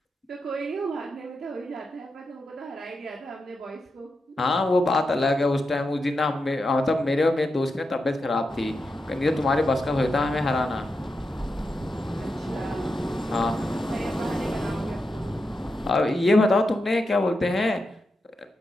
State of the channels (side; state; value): both; normal; correlation 0.87